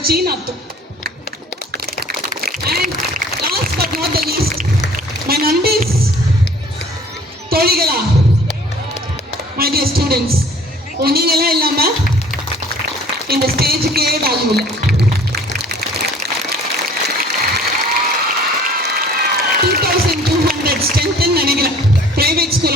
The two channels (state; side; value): normal; both; correlation 0.51